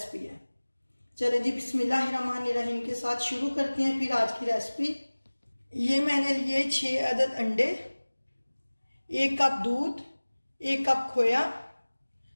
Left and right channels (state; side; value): inverted; both; correlation -1.00